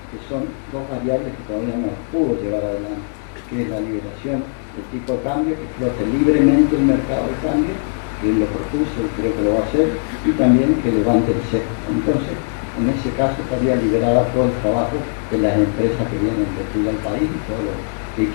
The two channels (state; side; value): silent; right; digital silence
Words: que son dos variables que todavía no las pudo llevar adelante, que es la liberación del tipo de cambio, que flote libremente el mercado de cambio, que él lo propuso y creo que lo va a hacer, y también que levante el cepo. Entonces, en ese caso estaría liberado todo el trabajo de las empresas que vienen a invertir al país y todos los que